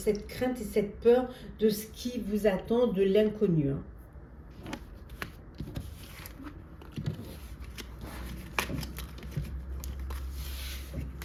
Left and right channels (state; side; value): identical; both; correlation 1.00